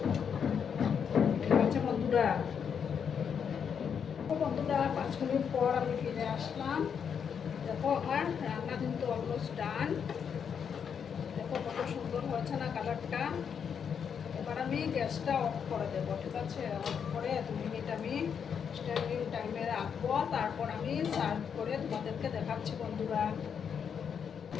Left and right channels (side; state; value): right; quieter; 7.3 dB